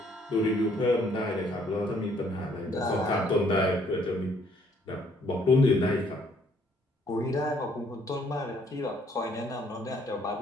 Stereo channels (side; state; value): both; normal; correlation 0.65